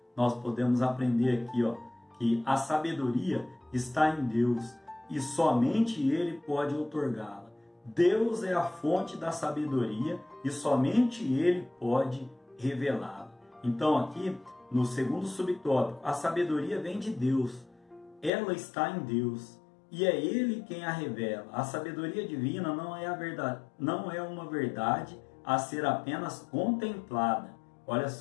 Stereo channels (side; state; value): right; drops out; at 18.3 s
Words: nós podemos aprender aqui, ó, que a sabedoria está em Deus e somente Ele pode outorgá-la. Deus é a fonte da sabedoria e somente Ele pode revelá-la. Então aqui, no segundo subtópico, a sabedoria vem de Deus. Ela está em Deus e é Ele quem a revela. A sabedoria divina não é a verdade, não é uma verdade a ser apenas contemplada. Olha